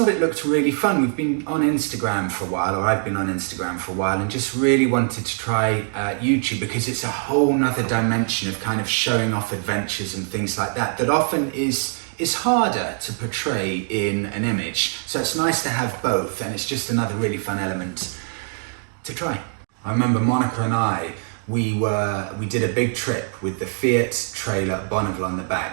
it looked really fun. We've been on Instagram for a while, or I've been on Instagram for a while, and just really wanted to try YouTube, because it's a whole nother dimension of kind of showing off adventures and things like that often is harder to portray in an image. So it's nice to have both, and it's just another really fun element to try. I remember Monika and I, we did a big trip with the Fiat trailer Bonneville on the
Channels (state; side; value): silent; left; 55 dB below the other